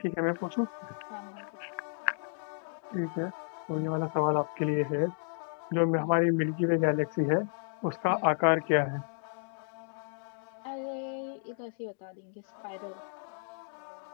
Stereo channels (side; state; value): right; silent; digital silence